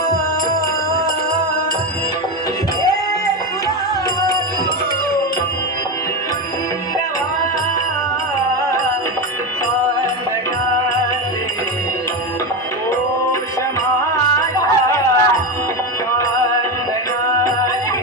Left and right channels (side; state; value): both; normal; correlation 0.16